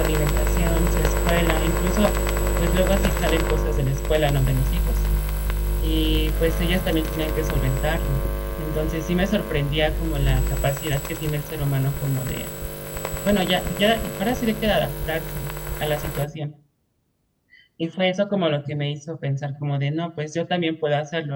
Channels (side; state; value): both; identical; correlation 1.00